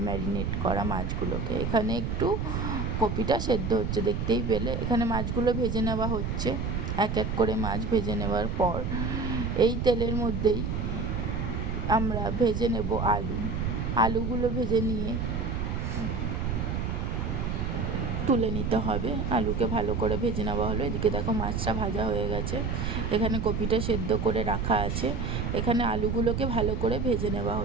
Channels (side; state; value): right; noise; rumble, 1 dB below the sound